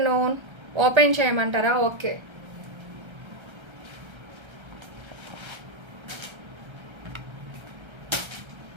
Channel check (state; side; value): late; left; 1.3 ms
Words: Open చేయమంటారా? ఓకే.